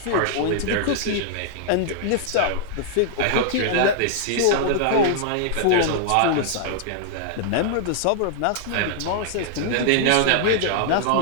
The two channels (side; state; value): both; different; correlation -0.01